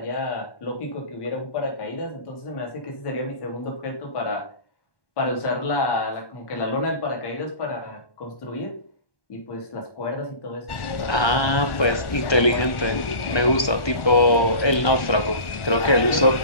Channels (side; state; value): right; late; 1.1 ms